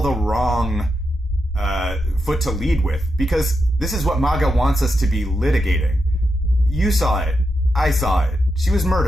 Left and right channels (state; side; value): normal; both; correlation 0.86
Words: the wrong foot to lead with, because this is what MAGA wants us to be litigating. You saw it. I saw it. She was